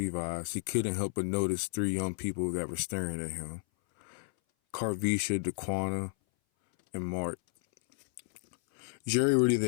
he couldn't help but notice three young people that were staring at him. Carvisha, DeQuana, and Mark. Jerry really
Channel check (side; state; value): right; silent; 56 dB below the other